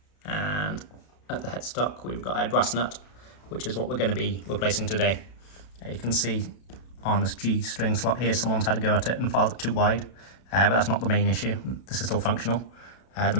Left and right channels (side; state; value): right; late; 32 ms